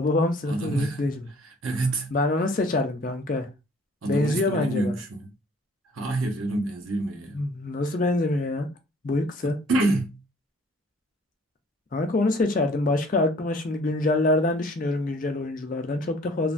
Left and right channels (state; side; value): normal; both; correlation 0.55